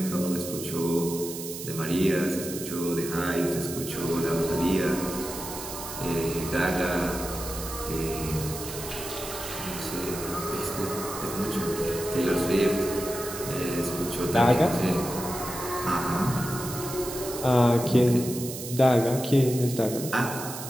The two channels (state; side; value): noise; right; hiss, 9 dB below the sound